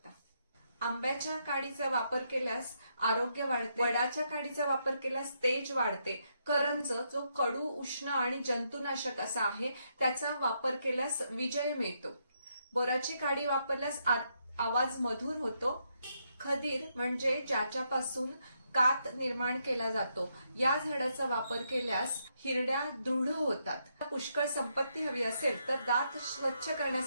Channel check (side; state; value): both; inverted; correlation -0.78